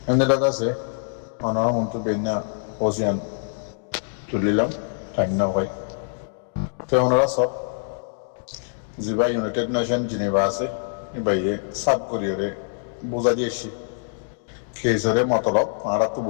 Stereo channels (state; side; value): silent; right; digital silence